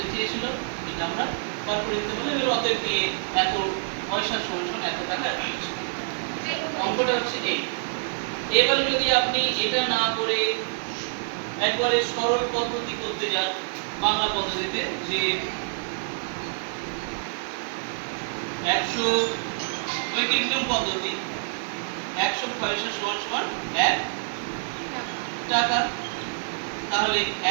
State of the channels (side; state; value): left; silent; digital silence